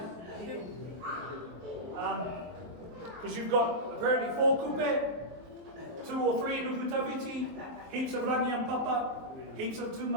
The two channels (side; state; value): left; late; 23 ms